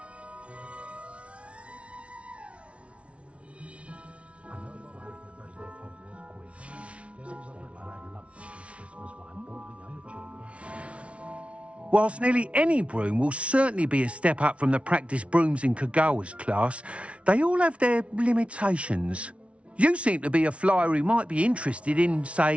Whilst nearly any broom will certainly be a step up from the practice brooms in Kagawa's class, they all have their limitations. You seem to be a flyer who might be interested in,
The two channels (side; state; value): left; late; 0.062 ms